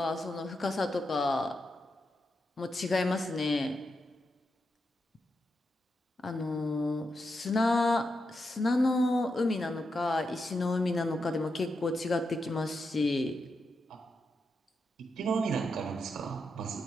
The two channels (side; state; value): both; normal; correlation 0.86